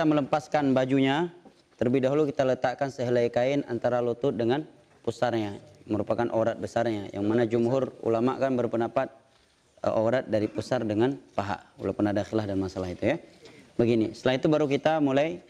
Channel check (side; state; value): both; identical; correlation 1.00